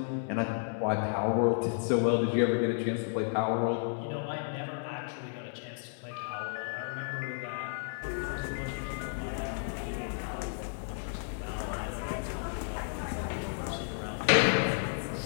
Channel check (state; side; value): silent; right; 56 dB below the other